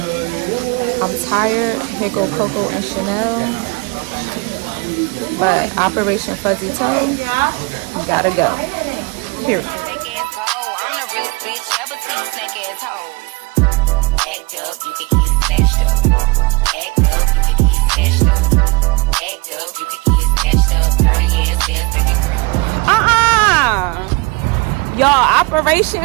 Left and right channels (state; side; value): quieter; left; 26.7 dB